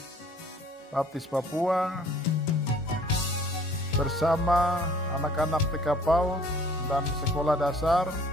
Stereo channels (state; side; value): normal; both; correlation 0.55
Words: Baptis Papua bersama anak-anak TK PAUD dan sekolah dasar